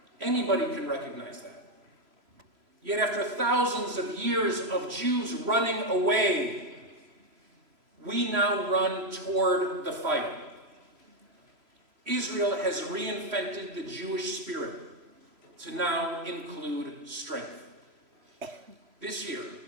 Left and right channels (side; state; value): left; late; 3.0 ms